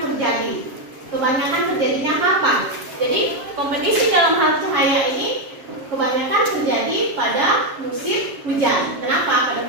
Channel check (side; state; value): left; late; 7.3 ms